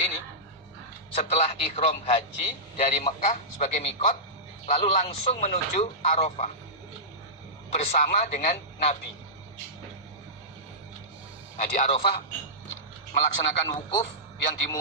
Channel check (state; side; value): normal; both; correlation -0.16